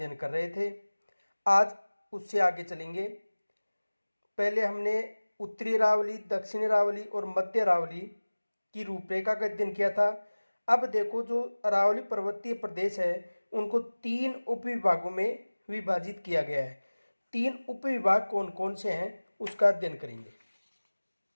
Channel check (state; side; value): inverted; both; correlation -1.00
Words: कर रहे थे। आज उससे आगे चलेंगे। पहले हमने उत्तरी अरावली, दक्षिणी अरावली और मध्य अरावली की रूपरेखा का अध्ययन किया था। अब देखो, जो अरावली पर्वतीय प्रदेश है उनको 3 उपविभागों में विभाजित किया गया है। 3 उपविभाग कौन कौन से हैं उसका अध्ययन करेंगे।